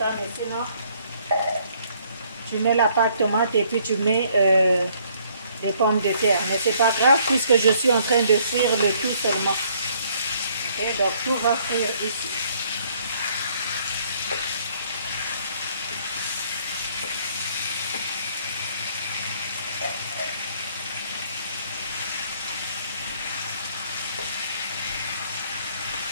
mais sinon, tu mets la pâte tomate et puis tu mets les pommes de terre. Mais c'est pas grave puisque je suis en train de frire le tout seulement. Ok, donc tout va frire ici.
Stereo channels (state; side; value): inverted; both; correlation -0.64